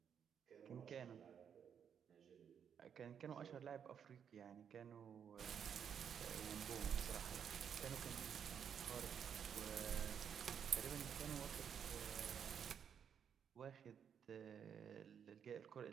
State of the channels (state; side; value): quieter; left; 7.9 dB